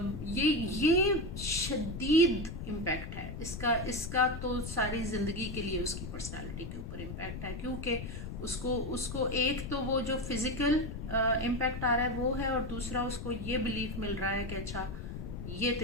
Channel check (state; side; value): noise; left; rumble, 8 dB below the sound